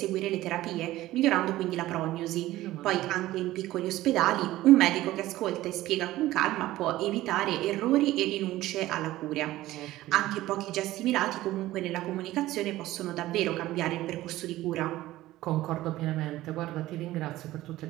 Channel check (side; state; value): left; quieter; 16.1 dB